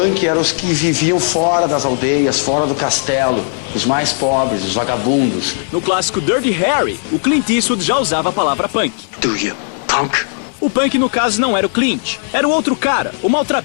eram os que viviam fora das aldeias, fora do castelo, os mais pobres, os vagabundos. No clássico Dirty Harry, o Clint Eastwood já usava a palavra punk. Do you, punk? O punk, no caso, não era o Clint. Era o outro cara, o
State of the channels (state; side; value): silent; right; digital silence